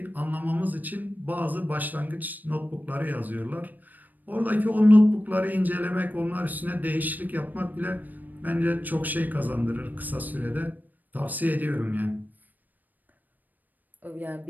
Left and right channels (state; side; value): late; left; 0.085 ms